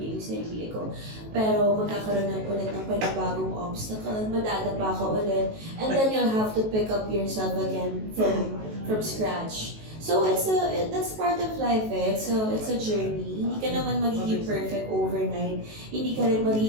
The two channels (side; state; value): left; late; 19 ms